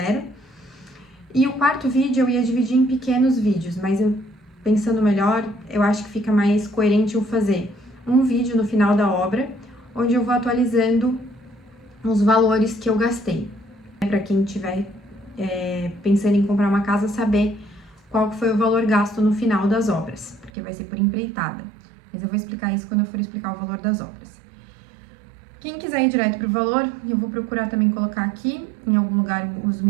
E o quarto vídeo eu ia dividir em pequenos vídeos, mas pensando melhor, eu acho que fica mais coerente eu fazer um vídeo no final da obra, onde eu vou atualizando os valores que eu gastei. Para quem tiver pensando em comprar uma casa, saber qual foi o valor gasto no final das obras, porque vai ser por empreitada. Mas eu vou explicar isso quando eu for explicar o valor das obras. Quem quiser ir direto para o valor, eu vou procurar também colocar aqui, em algum lugar, os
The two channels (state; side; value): drops out; left; at 20.5 s